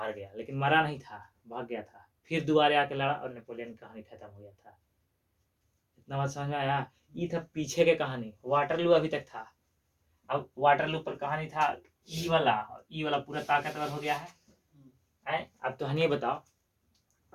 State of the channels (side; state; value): both; identical; correlation 1.00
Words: गया, लेकिन मरा नहीं था, भाग गया था। फिर दोबारा आके लड़ा और नेपोलियन की कहानी खत्म हो गया था। इतना बात समझ में आया? ये था पीछे के कहानी। वाटरलू अभी तक था। अब वाटरलू पर कहानी था ई वाला पूरा ताकतवर हो गया है। अब तो हनी बताओ,